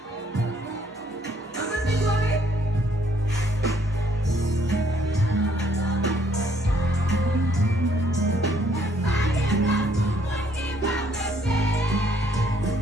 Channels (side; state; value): both; normal; correlation 0.66